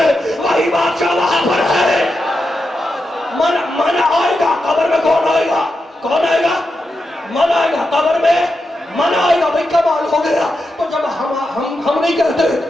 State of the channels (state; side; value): normal; both; correlation 0.87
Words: وہی بادشاہ وہاں پر ہے. من آئے گا قبر میں, کون آئے گا, کون آئے گا, من آئے گا قبر میں, من آئے گا. بھئی کمال ہو گیا. تو جب ہم نہیں